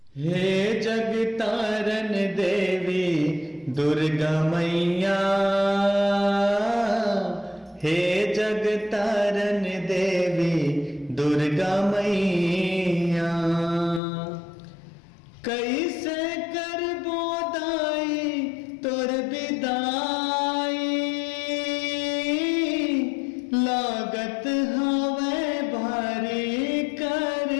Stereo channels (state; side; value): drops out; right; at 14.0 s